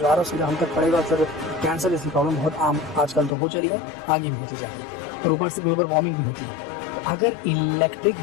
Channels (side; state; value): right; drops out; at 3.4 s